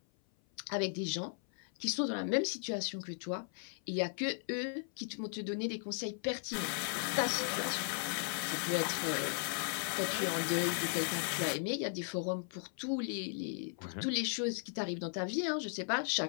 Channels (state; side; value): silent; right; 53 dB below the other